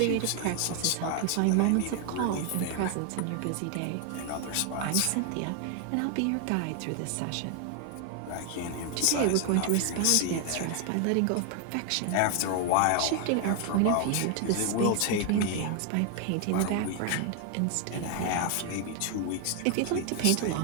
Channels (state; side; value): different; both; correlation 0.00